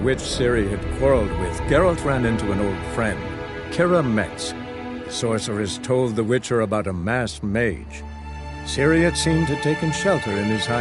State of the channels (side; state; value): both; identical; correlation 1.00